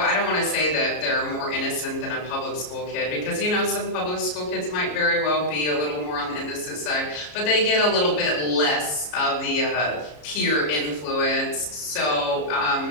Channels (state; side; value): late; right; 33 ms